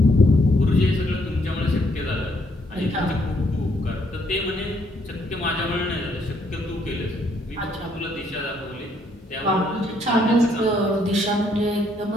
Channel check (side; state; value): both; normal; correlation 0.70